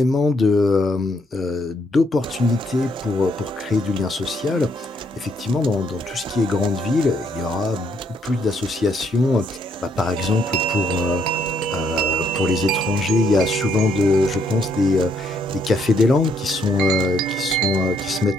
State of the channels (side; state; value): both; normal; correlation 0.72